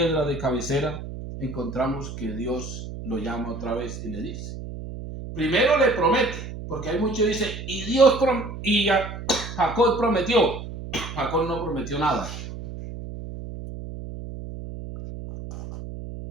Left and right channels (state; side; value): noise; right; hum, 9 dB below the sound